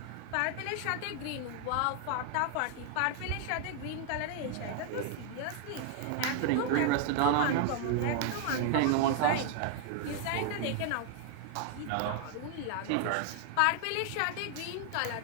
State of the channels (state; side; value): different; both; correlation 0.00